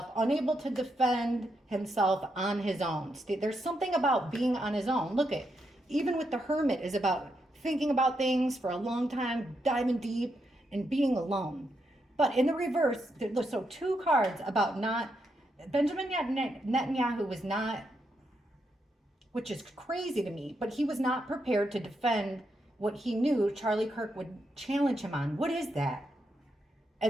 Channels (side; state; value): both; normal; correlation 0.81